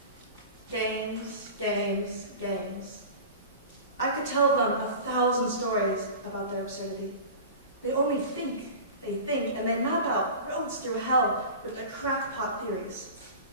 Games, games, games. I could tell them 1,000 stories about their absurdity. They only think, and they map out roads through hell with their crackpot theories.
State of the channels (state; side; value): inverted; both; correlation -0.35